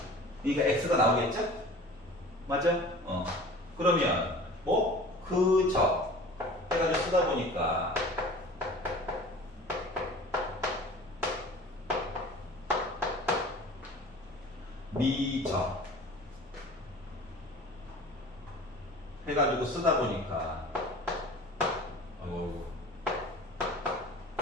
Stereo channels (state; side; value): normal; both; correlation 0.42